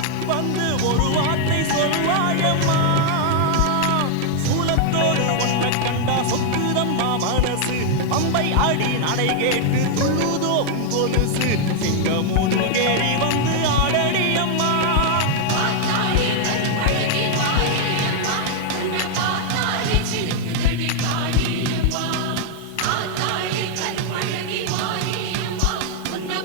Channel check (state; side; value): different; both; correlation 0.00